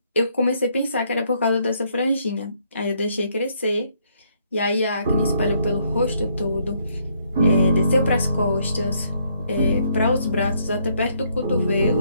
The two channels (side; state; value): both; inverted; correlation -0.71